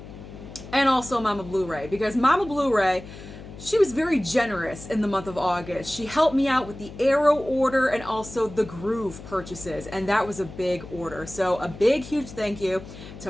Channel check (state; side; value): noise; left; hum, 15 dB below the sound